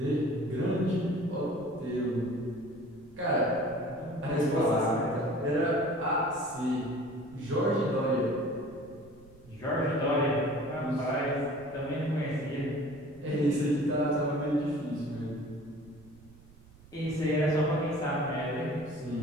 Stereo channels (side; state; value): right; noise; rumble, 23 dB below the sound